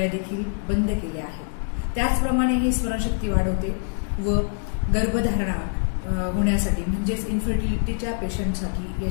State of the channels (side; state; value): right; silent; 62 dB below the other